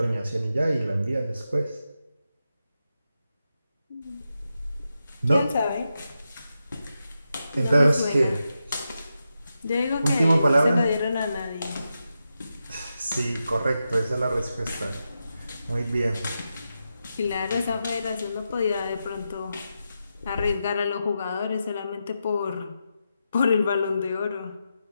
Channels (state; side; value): inverted; both; correlation -0.88